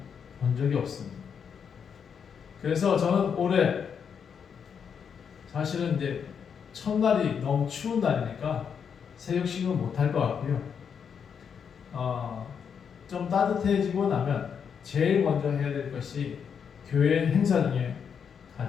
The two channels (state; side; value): quieter; right; 7.1 dB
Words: 본 적이 없습니다. 그래서 저는 올해 사실은 이제 첫날이 너무 추운 날이니까 세족식은 못할 것 같고요. 좀 따뜻해지고 나면 제일 먼저 해야 될 것이 교회 행사 중에